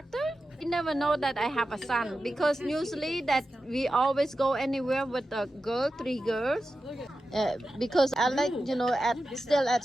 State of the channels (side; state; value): both; normal; correlation 0.92